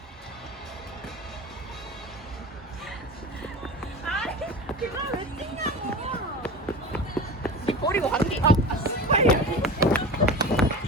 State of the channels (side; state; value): both; normal; correlation 0.31